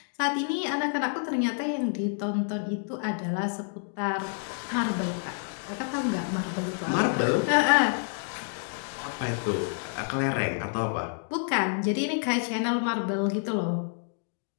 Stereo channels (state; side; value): silent; right; digital silence